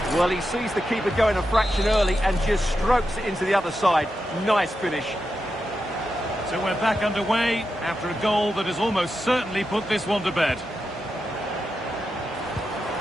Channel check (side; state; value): both; normal; correlation 0.88